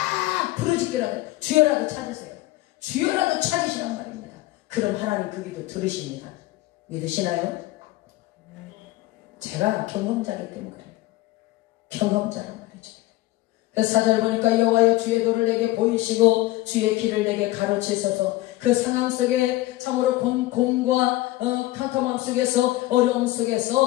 부르짖기라도 주여라도 찾으세요. 주여라도 찾으시란 말입니다. 그럼 하나님 그 기도 들으십니다. 믿으시나요? 제가 경험자이기 때문에 그래요. 경험자란 말이죠. 그래서 4절 보니까 여호와여 주의 도를 내게 보이시고 주의 길을 내게 가르치소서. 그 상황 속에 참으로 곤과 캄캄함 속에서 어려움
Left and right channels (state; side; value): quieter; right; 17.6 dB